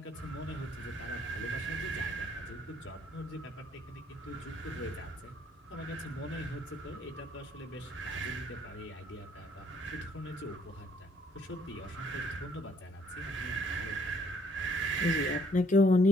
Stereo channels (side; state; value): both; normal; correlation 0.65